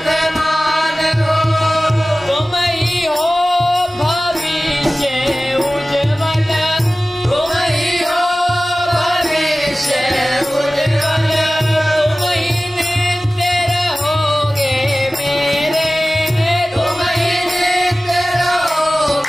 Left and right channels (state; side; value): normal; both; correlation 0.97